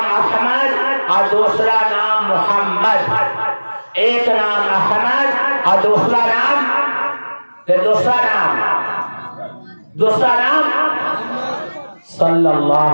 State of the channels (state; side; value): inverted; both; correlation -1.00